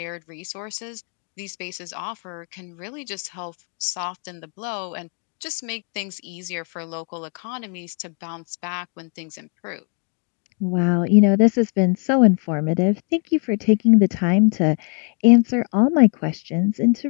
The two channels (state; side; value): quieter; right; 38.2 dB